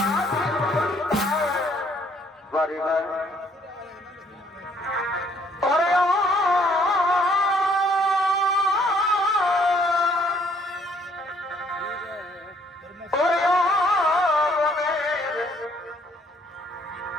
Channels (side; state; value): both; normal; correlation 0.64